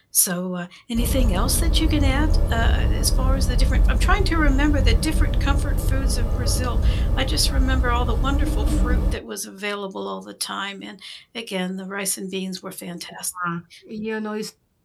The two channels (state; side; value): identical; both; correlation 1.00